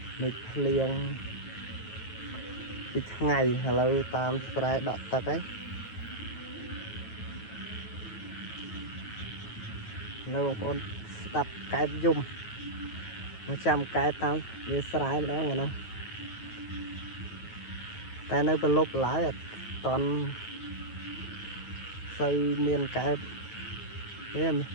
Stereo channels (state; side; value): late; right; 9.3 ms